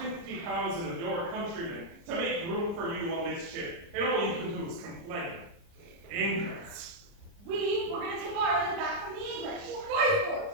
of your countrymen to make room for you on this ship, and all you can do is complain. Ingrats. We were going to take Ireland back from the English. Fight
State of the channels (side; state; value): left; late; 29 ms